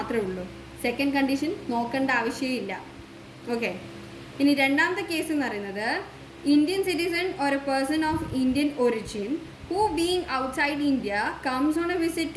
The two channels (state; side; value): identical; both; correlation 1.00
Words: ഉള്ളൂ. സെക്കൻഡ് കണ്ടീഷൻ നോക്കേണ്ട ആവശ്യമില്ല. ഓക്കെ. ഇനി രണ്ടാമത്തെ കേസ് എന്ന് പറയുന്നത്, Indian citizen or A person of Indian origin who being outside India comes on a visit